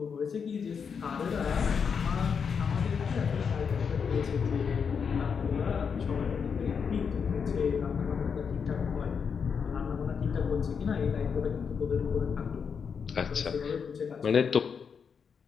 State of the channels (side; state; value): right; quieter; 6.4 dB